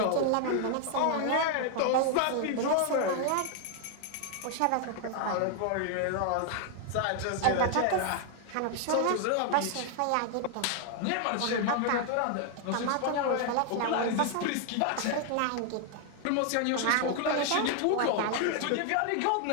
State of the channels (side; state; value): both; different; correlation 0.00